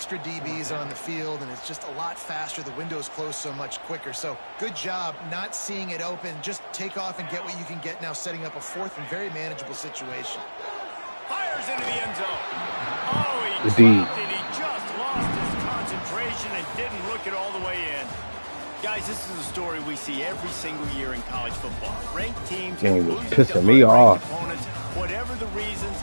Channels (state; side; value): inverted; both; correlation -1.00